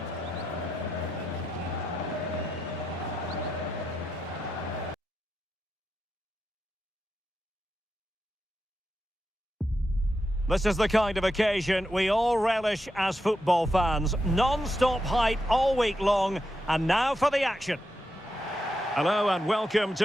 This is the kind of occasion we all relish as football fans. Non-stop hype all week long, and now for the action. Hello and welcome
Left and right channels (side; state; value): both; normal; correlation 0.86